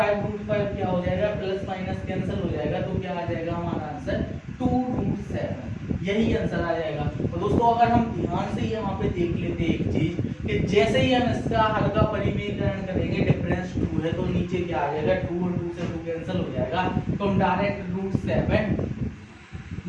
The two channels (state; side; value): identical; both; correlation 1.00